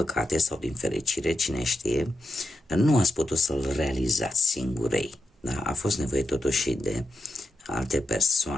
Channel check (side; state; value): both; normal; correlation 0.87